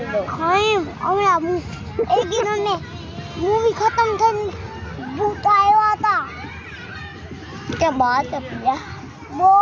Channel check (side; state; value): both; identical; correlation 1.00